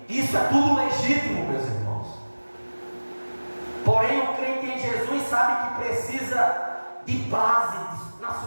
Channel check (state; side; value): inverted; both; correlation -1.00